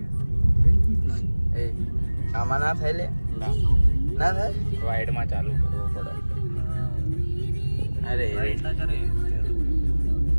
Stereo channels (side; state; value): both; inverted; correlation -1.00